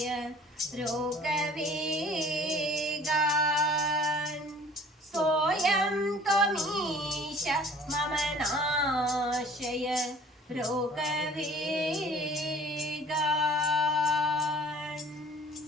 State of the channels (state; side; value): normal; both; correlation 0.50